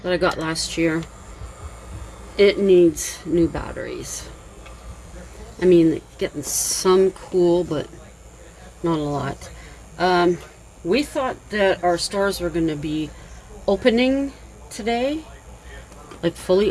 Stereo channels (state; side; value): identical; both; correlation 1.00